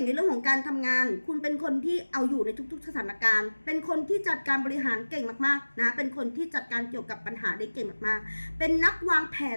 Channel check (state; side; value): inverted; both; correlation -1.00